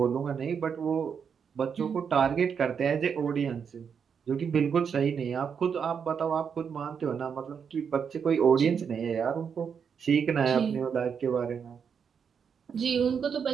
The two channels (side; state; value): left; quieter; 6.8 dB